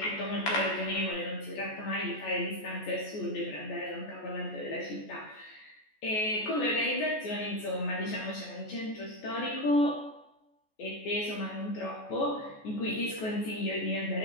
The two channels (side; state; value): right; late; 14 ms